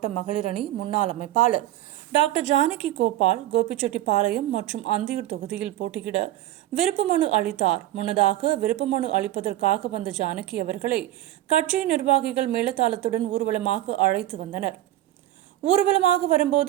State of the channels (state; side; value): quieter; left; 14.2 dB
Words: மகளிர் அணி முன்னாள் அமைப்பாளர் டாக்டர் ஜானகி கோபால் கோபிச்செட்டிப்பாளையம் மற்றும் அந்தியூர் தொகுதியில் போட்டியிட விருப்ப மனு அளித்தார். முன்னதாக விருப்ப மனு அளிப்பதற்காக வந்த ஜானகி அவர்களை கட்சியின் நிர்வாகிகள் மேளதாளத்துடன் ஊர்வலமாக அழைத்து வந்தனர். ஊர்வலமாக